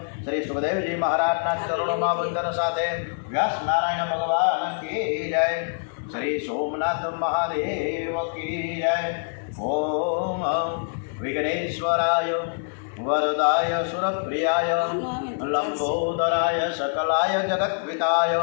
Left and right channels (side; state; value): right; silent; digital silence